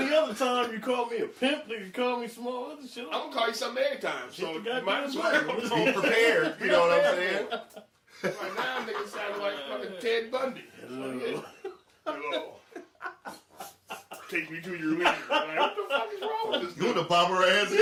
other time you call me a pimp, you call me small other shit. I'm going to call you something every time. So Hit the you might as well. goddamn Be prepared, you know what I'm saying? Right now, niggas sound like fucking Ted Bundy. Hello. Hello. Take me to your leader. Like, what the fuck is wrong with this You dude? the bomber ass in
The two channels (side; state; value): both; identical; correlation 1.00